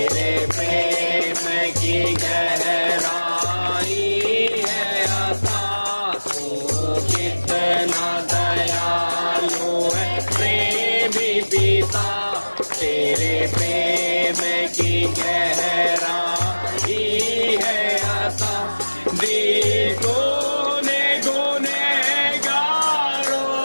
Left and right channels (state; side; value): inverted; both; correlation -1.00